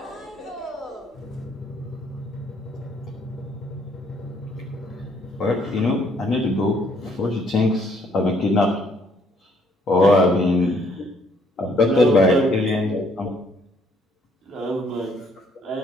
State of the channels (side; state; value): both; normal; correlation 0.66